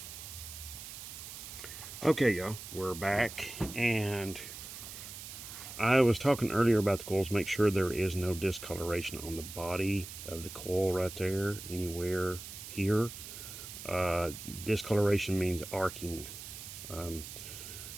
Okay, y'all, we're back, and I was talking earlier about the coils. Make sure there is no discoloration on the body of the coil right there, anywhere here. Discoloration means arcing.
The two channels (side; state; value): right; noise; hiss, 11 dB below the sound